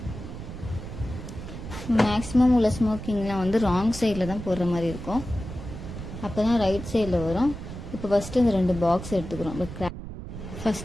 மேக்ஸிமம் உள்ள ஸ்மோக்கிங்லாம் வந்து ராங் சைடில் தான் போடுற மாதிரி இருக்கும். அப்போ தான் ரைட் சைடில் வரும். இப்போ ஃபஸ்ட்டு இந்த 2 பாக்ஸ் எடுத்துக்கிறோம்.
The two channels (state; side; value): noise; right; rumble, 10 dB below the sound